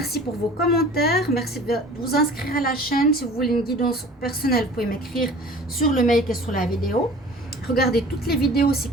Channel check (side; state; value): both; normal; correlation 0.45